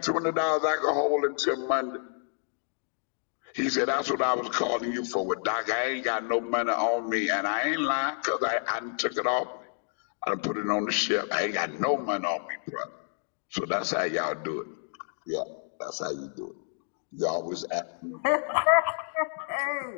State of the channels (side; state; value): right; silent; 58 dB below the other